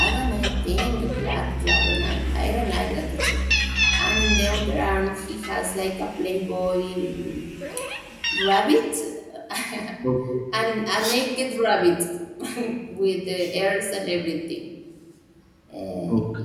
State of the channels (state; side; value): identical; both; correlation 1.00